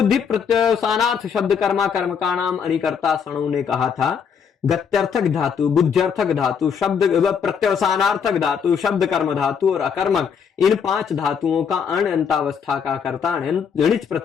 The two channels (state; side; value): quieter; right; 6.9 dB